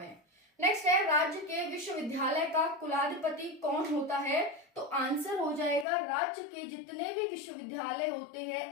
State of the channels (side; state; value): right; drops out; at 5.9 s